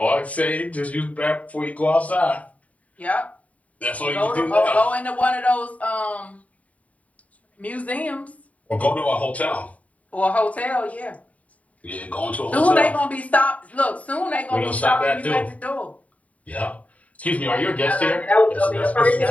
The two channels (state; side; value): late; right; 0.069 ms